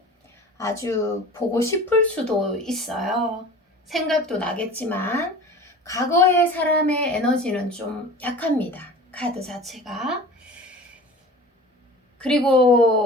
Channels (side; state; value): both; normal; correlation 0.40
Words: 아주 보고 싶을 수도 있어요. 생각도 나겠지만 과거의 사람의 에너지는 좀 약합니다. 카드 자체가.